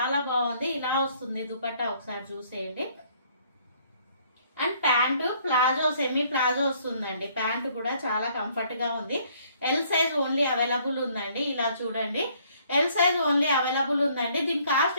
బాగుంది. ఇలా వస్తుంది దుపట్టా, ఒకసారి చూసేయండి. And pant palazzo, semi palazzo వస్తుందండి. ప్యాంటు కూడా చాలా కంఫర్ట్ గా ఉంది. ఎల్ సైజ్ ఓన్లీ అవైలబుల్ ఉందండి. ఇలా చూడండి, ఎల్ సైజ్ ఓన్లీ అవైలబుల్ ఉందండి. దీని కాస్ట్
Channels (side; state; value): both; inverted; correlation -0.63